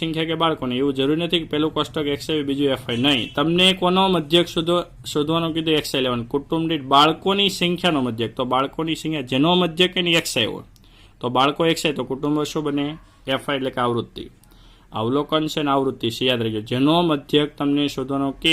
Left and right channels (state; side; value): identical; both; correlation 1.00